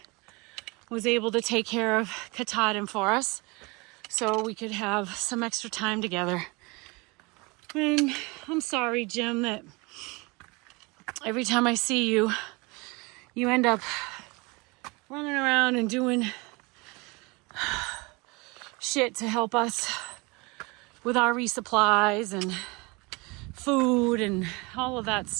was able to take care of Katahdin for us so we could have some extra time together. And I'm sorry, Jim, that every time I see you, you end up running around and doing shit to help us with our resupplies and food and all of that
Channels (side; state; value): left; quieter; 26.8 dB